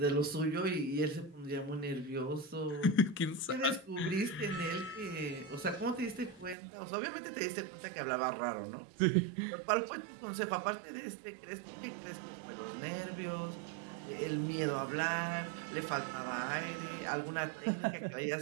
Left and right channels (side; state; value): left; drops out; at 6.6 s